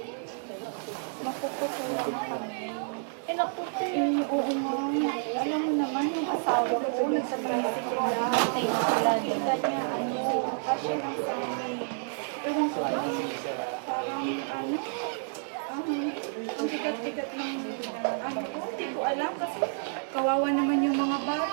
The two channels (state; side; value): silent; left; digital silence